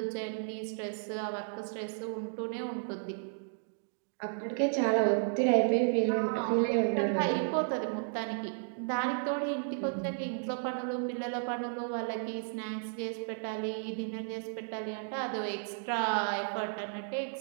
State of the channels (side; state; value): left; silent; digital silence